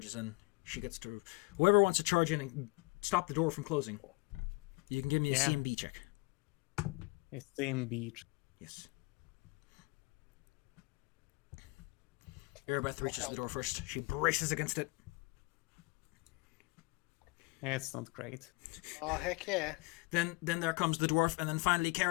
in. She gets to... Whoever wants to charge in and stop the door from closing, you can give me a Yeah. CMB check. It's same beach. Yes. Erebeth reaches the door first. She braces against it. It's not great. Oh, heck yeah. Then there comes the dwarf, and then finally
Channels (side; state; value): right; quieter; 26.7 dB